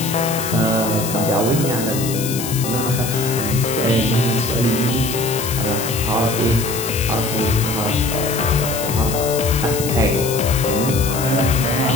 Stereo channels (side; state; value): left; noise; hiss, 7 dB below the sound